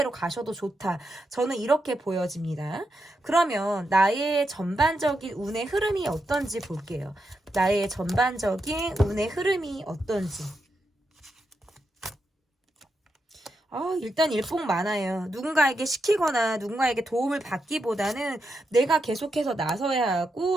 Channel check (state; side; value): normal; both; correlation 0.84